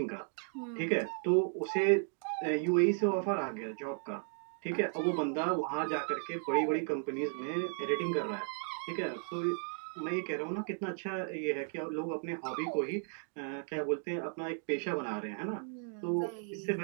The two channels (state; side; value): silent; left; 54 dB below the other